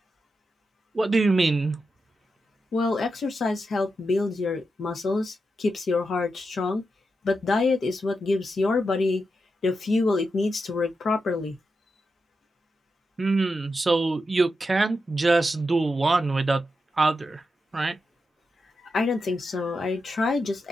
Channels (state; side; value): normal; both; correlation 0.87